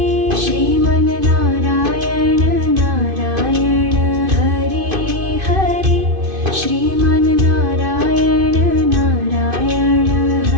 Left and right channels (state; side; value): late; left; 2.5 ms